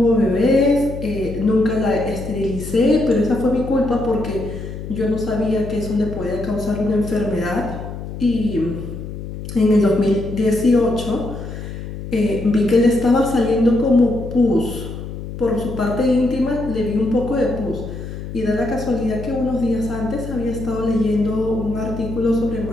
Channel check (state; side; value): noise; left; hum, 9 dB below the sound